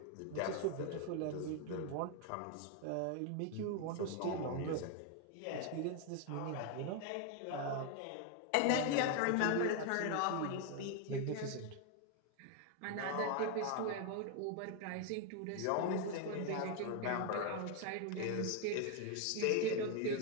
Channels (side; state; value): both; different; correlation 0.01